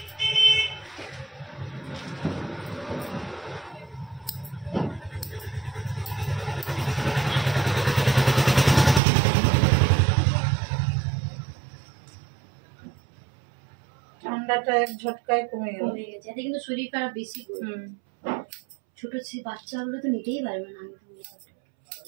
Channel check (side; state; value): left; drops out; at 9.0 s